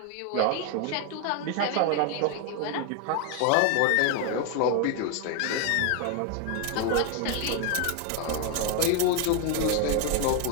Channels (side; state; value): both; different; correlation 0.01